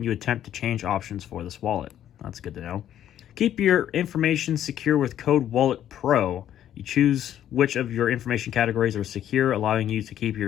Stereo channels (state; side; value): quieter; right; 11.0 dB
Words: you attempt to change options for this wallet. That's good to know. Keep your information secure with Code Wallet Pro. You choose which of your information categories are secure, allowing you to keep